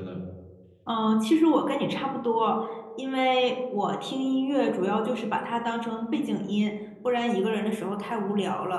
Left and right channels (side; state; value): both; identical; correlation 1.00